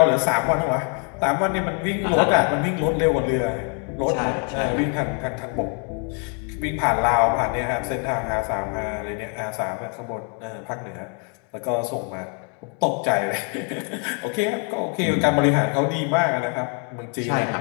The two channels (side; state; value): right; quieter; 39.3 dB